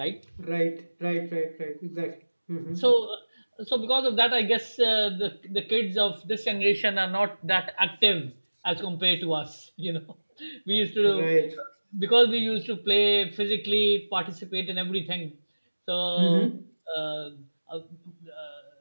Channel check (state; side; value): inverted; both; correlation -1.00